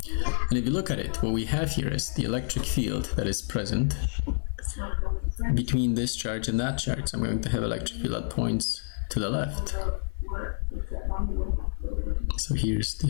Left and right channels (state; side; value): silent; right; digital silence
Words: And if you look at it, what we have here is the electric field that is present between this charge and that charge. I'm going to have electric field that points to the left. So here's